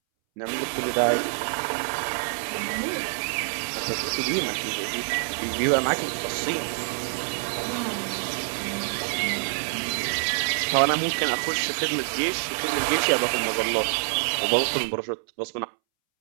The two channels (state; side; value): silent; left; 61 dB below the other